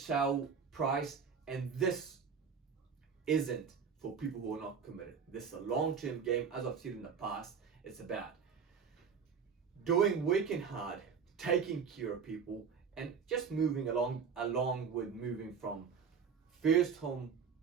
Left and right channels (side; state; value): left; quieter; 6.4 dB